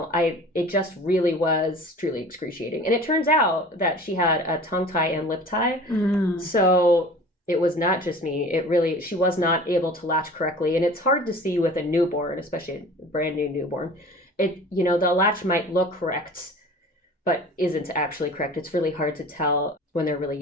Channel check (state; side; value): normal; both; correlation 0.42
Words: just really was truly excruciating. And it turns out that she had a tongue tie and lip tie. So it was not just me. She was not able to latch correctly. And it's hard to see with a newborn, especially a brand new newborn. The latch might look correct, but isn't actually correct. It's really hard to tell when they're really